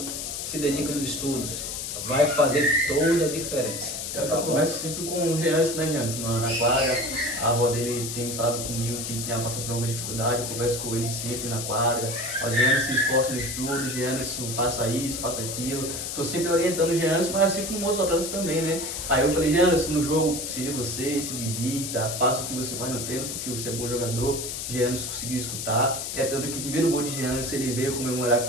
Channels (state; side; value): noise; left; hiss, 5 dB below the sound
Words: se dediquem nos estudos. Vai fazer toda a diferença. Eu converso sempre com o Jeanson, né, Jeanson? Na quadra, a avó dele tem falado comigo que tinha passado por alguma dificuldade, eu converso com ele sempre na quadra. O Jeanson se esforça no estudo, o Jeanson faça isso, faça aquilo. Tô sempre orientando o Jeanson, mas assim como outros atletas também, né? Aí eu falei, Jeanson, no jogo, seja você, se divirta, faça o que você faz no treino, porque você é bom jogador. Jeanson conseguiu escutar. É tanto que o primeiro gol de Jeanson, ele veio comemorar